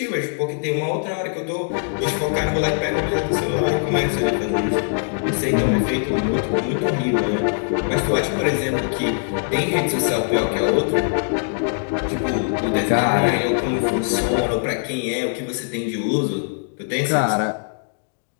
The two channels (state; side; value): silent; right; digital silence